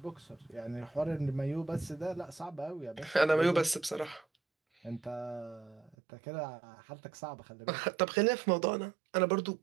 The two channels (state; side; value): drops out; left; at 6.0 s